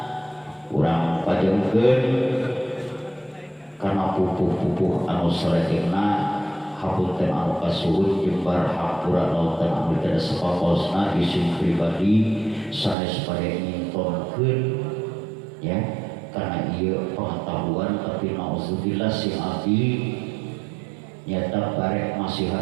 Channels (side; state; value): left; drops out; at 13.0 s